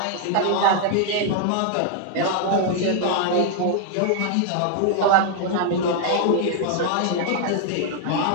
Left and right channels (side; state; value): both; different; correlation 0.00